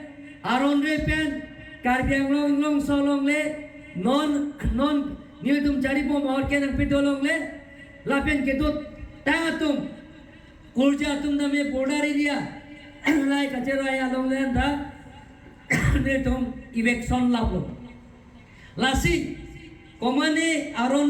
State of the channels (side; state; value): both; identical; correlation 1.00